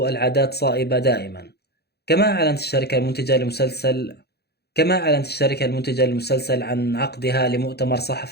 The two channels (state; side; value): late; right; 0.47 ms